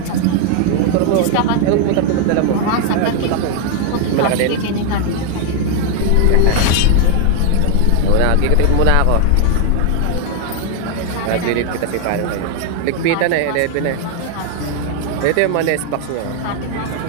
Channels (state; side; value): different; both; correlation 0.00